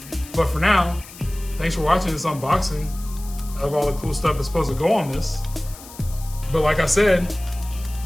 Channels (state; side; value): noise; left; hiss, 17 dB below the sound